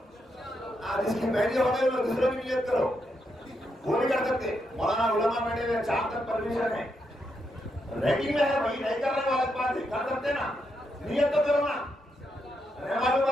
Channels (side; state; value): both; normal; correlation 0.81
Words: جس کی پہلی ہو گئی وہ دوسرے کی نیت کرو، وہ نہیں کر سکتے. مولانا علماء بیٹھے ہوئے 4 تک پرمیشن ہے، ریڈنگ میں ہے وہی نہیں کرنے والا بات ہے، کر سکتے نا، نیت تو کرو نا. معلوم